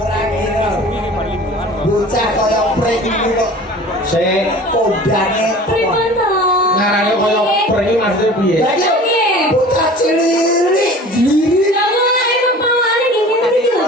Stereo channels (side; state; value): both; normal; correlation 0.42